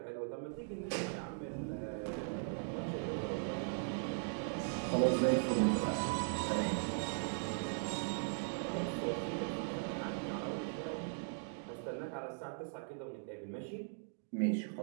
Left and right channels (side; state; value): left; silent; digital silence